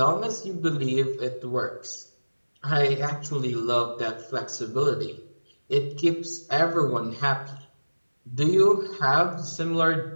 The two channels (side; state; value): both; inverted; correlation -1.00